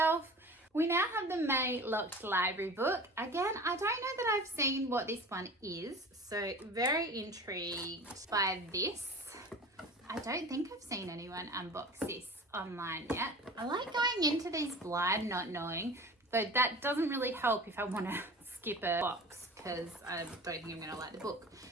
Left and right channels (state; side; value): normal; both; correlation 0.38